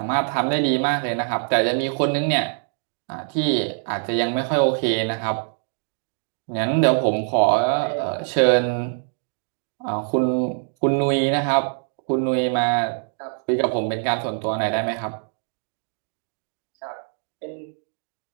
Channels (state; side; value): silent; left; digital silence